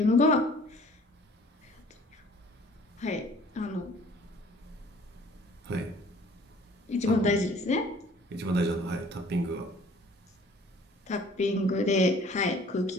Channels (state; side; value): normal; both; correlation 0.52